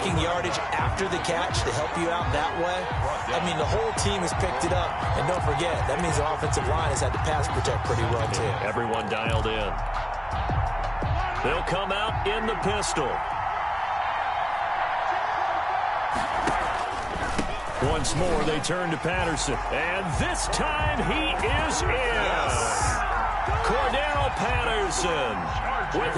yardage after the catch to help you out that way. I mean, the whole team has picked it up. And don't forget, that means the offensive line has had to pass protect pretty well, too. Everyone dialed in. They'll come out in the pistol. Once more, they turn to Patterson. And this time, he is in. Yes. Cordero Patterson with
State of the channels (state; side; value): identical; both; correlation 1.00